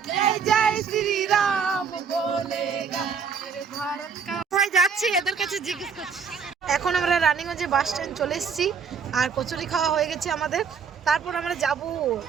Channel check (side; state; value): left; quieter; 6.1 dB